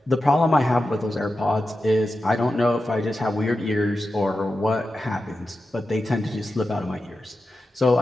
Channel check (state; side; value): normal; both; correlation 0.91